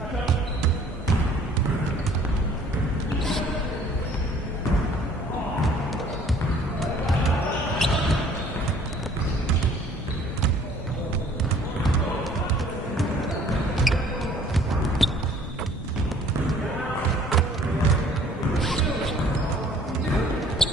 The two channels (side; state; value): both; normal; correlation 0.55